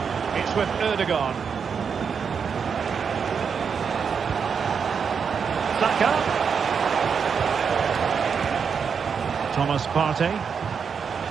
It's with Ødegaard. Saka. Thomas Partey.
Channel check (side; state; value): left; quieter; 6.4 dB